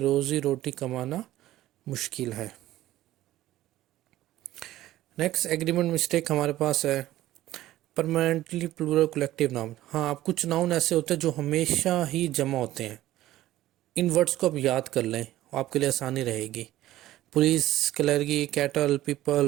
रोटी कमाना मुश्किल है। नेक्स्ट एग्रीमेंट मिस्टेक हमारे पास है परमानेंटली प्लूरल कलेक्टिव नाउन। हाँ, अब कुछ नाउन ऐसे होते हैं जो हमेशा ही जमा होते हैं। इन वर्ड्स को आप याद कर लें, आपके लिए आसानी रहेगी। Police, clergy, cattle,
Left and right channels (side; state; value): left; quieter; 14.9 dB